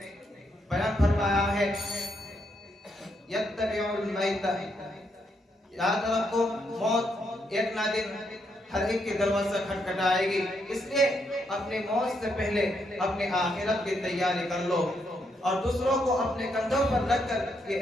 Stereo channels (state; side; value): normal; both; correlation 0.77